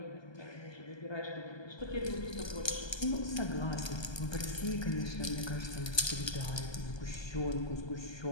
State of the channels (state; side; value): late; right; 1.2 ms